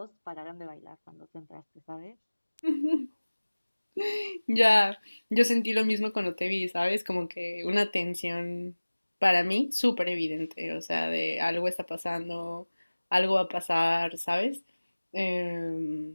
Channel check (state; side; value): inverted; both; correlation -1.00